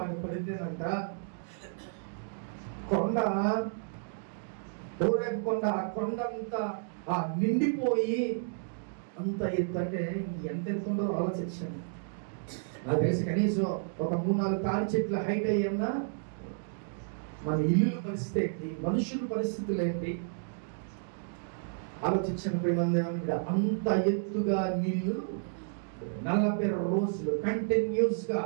పడితేనంట కొండ హోరేబు కొండ, ఆ కొండ అంతా నిండిపోయి అంత ఎత్తు. అంటే ఎంత ఎత్తు ఉండదో ఆలోచించండి. నాకు తెలిసి కనీసం ఒక 3-4 తాడి చెట్ల హైట్ అయ్యన్నా. మన ఇల్లు పరిస్థితి ఏంటి, మనుషుల పరిస్థితులు ఏంటి ఆలోచించండి ప్రేమంది. అంత ఎత్తుగా నీళ్లు 40 రోజులు కంటిన్యూస్ గా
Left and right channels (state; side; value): silent; left; digital silence